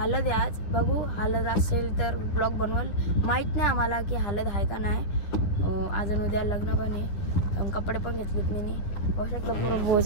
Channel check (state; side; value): late; right; 10 ms